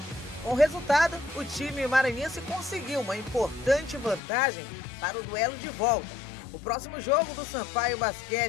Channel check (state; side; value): drops out; right; at 4.2 s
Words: Com o resultado, o time maranhense conseguiu uma importante vantagem para o duelo de volta. O próximo jogo do Sampaio